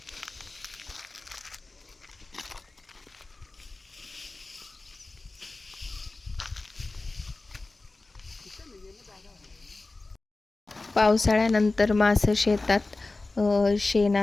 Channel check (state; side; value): quieter; right; 3.3 dB